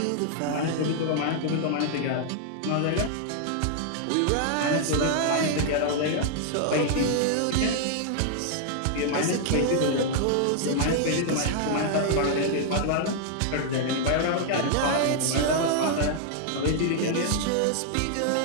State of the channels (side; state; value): both; different; correlation 0.00